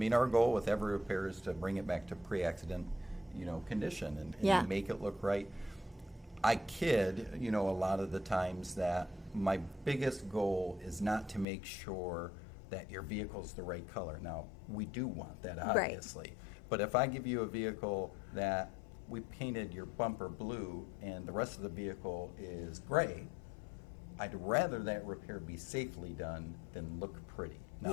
our goal with every repair is to bring it back to pre-accident, condition and make it look right. I kid, a lot of the times that my biggest goal is not to make sure that your vehicle's the right color. Now, we do want that, obviously. But if I give you a vehicle that we painted your bumper blue and the rest of the vehicle is gray, I'd rather that repair be safely done than look pretty.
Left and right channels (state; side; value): drops out; right; at 11.5 s